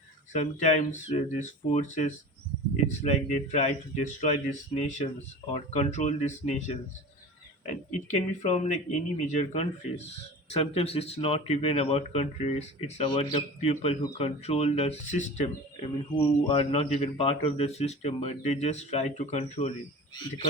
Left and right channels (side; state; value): both; normal; correlation 0.35